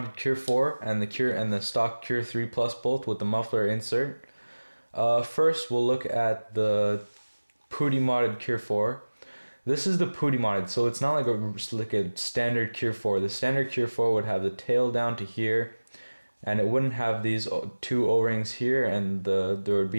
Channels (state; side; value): inverted; both; correlation -1.00